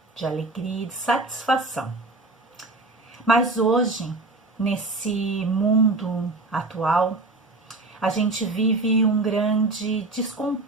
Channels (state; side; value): quieter; left; 3.1 dB